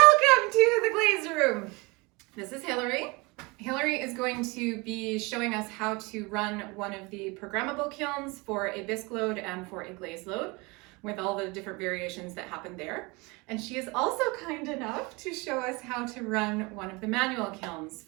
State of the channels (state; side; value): quieter; left; 26.3 dB